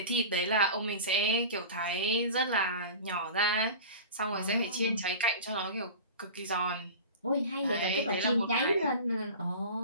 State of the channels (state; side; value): inverted; both; correlation -0.34